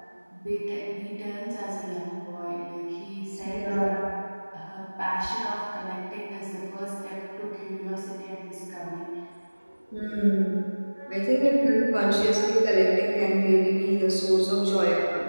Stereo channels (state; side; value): inverted; both; correlation -1.00